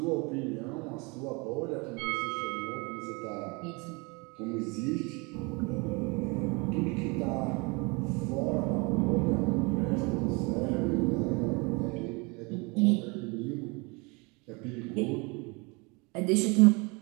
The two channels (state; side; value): quieter; left; 28.6 dB